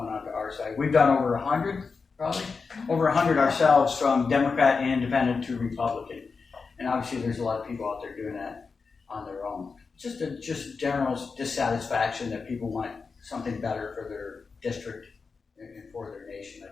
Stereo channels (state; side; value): quieter; right; 4.8 dB